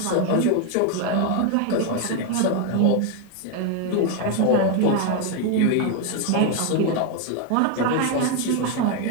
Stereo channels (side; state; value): both; different; correlation 0.01